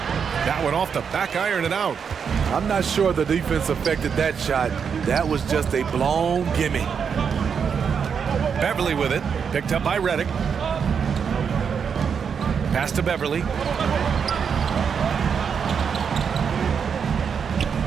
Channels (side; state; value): left; quieter; 6.7 dB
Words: That one off the back iron and out. I'm not sure the defense affected that shot. That was just a blown gimme. Beverly with it. Picked up by Redick. Pass to Beverly.